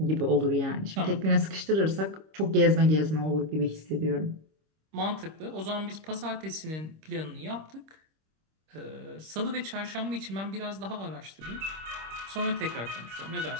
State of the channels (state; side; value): late; left; 26 ms